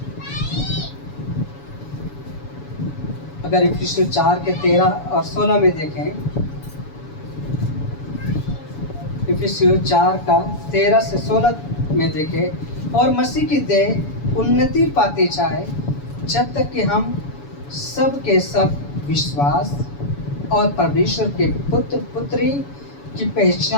अगर इफिसियों 4 के 13 और 16 में देखें, इफिसियों 4 का 13 से 16 में देखें, और मसीह की देह उन्नति पाती जाए, जब तक कि हम सब के सब विश्वास और परमेश्वर के पुत्र पुत्री की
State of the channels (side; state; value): right; late; 7.1 ms